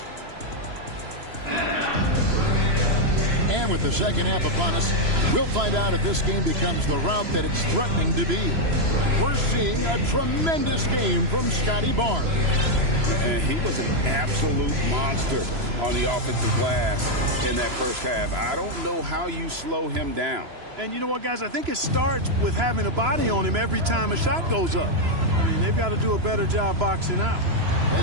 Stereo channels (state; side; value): late; left; 3.0 ms